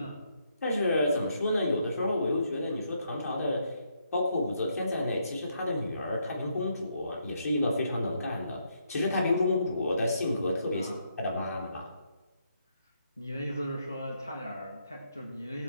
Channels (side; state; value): both; inverted; correlation -0.76